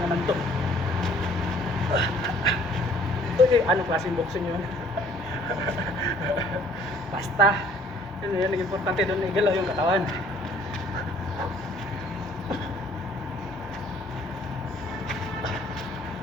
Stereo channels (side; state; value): both; normal; correlation 0.58